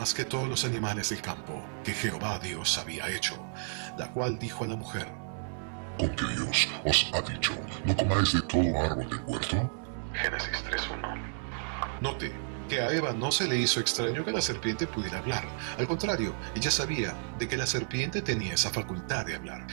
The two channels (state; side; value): silent; left; digital silence